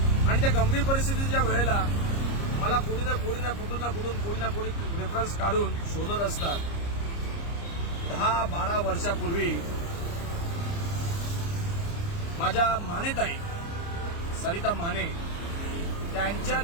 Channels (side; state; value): right; late; 29 ms